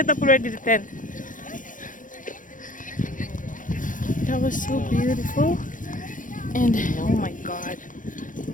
up already the tent. That was so beautiful. And oh my god,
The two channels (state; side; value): late; right; 0.38 ms